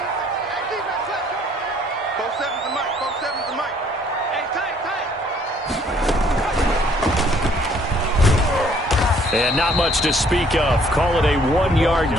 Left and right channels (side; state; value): both; normal; correlation 0.61